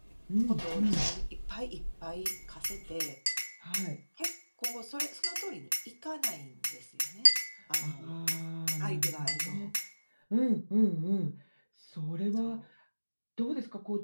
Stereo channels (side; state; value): both; inverted; correlation -1.00